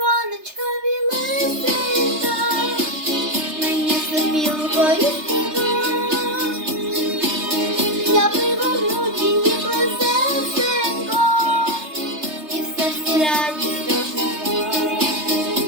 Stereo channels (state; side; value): late; left; 3.3 ms